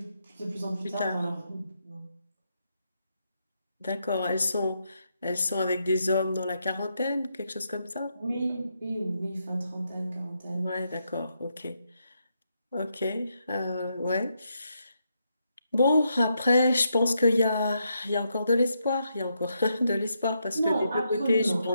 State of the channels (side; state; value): both; inverted; correlation -0.81